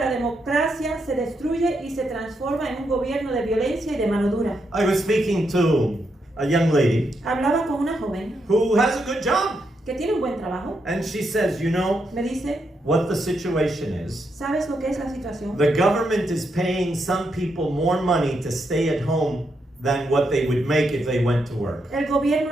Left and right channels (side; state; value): both; normal; correlation 0.81